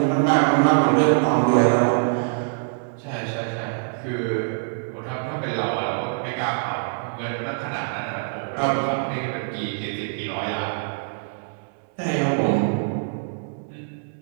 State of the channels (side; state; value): left; silent; 63 dB below the other